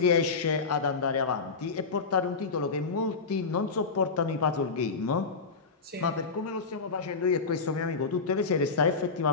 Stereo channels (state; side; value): quieter; right; 4.6 dB